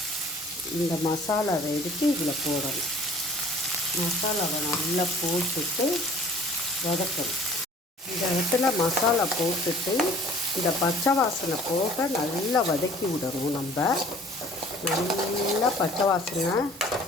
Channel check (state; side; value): normal; both; correlation 0.51